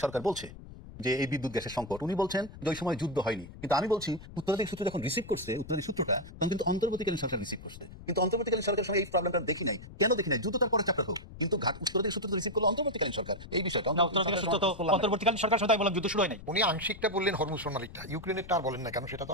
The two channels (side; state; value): left; noise; rumble, 15 dB below the sound